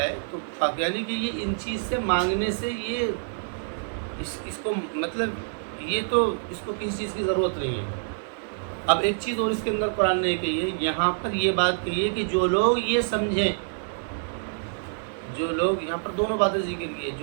تو یعنی کہ یہ ان چیز سے مانگنے سے یہ اس کو مطلب یہ تو اس کو کسی چیز کی ضرورت نہیں ہے۔ اب ایک چیز اور اس کے اندر قرآن نے کہی ہے، یہاں پر یہ بات کہی ہے کہ جو لوگ یہ سمجھیں، جو لوگ یہاں پر دونوں باتیں ذکر کی ہے،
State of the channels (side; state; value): left; silent; 60 dB below the other